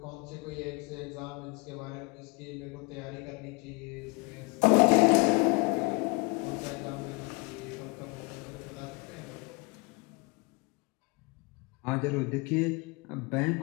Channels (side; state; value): right; quieter; 27.6 dB